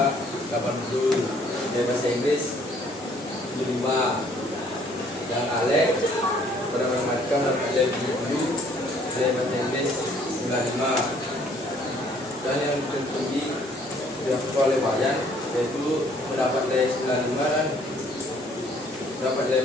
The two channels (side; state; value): both; normal; correlation 0.61